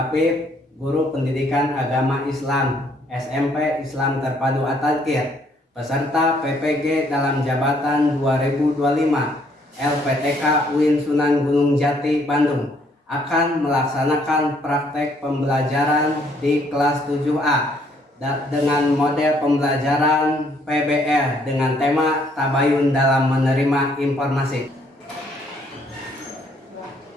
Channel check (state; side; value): normal; both; correlation 0.67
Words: Guru Pendidikan Agama Islam SMP Islam Terpadu At-Tadkir, peserta PPG dalam jabatan 2025 LPTK UIN Sunan Gunung Jati Bandung, akan melaksanakan praktek pembelajaran di kelas 7A dengan model pembelajaran PBL dengan tema Tabayun dalam Menerima Informasi.